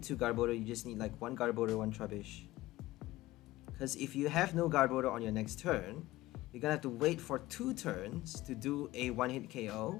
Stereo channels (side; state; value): right; quieter; 17.6 dB